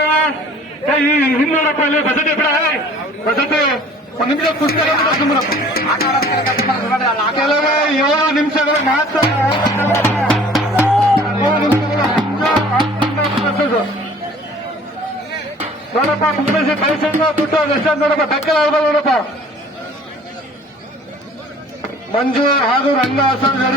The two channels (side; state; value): both; normal; correlation 0.50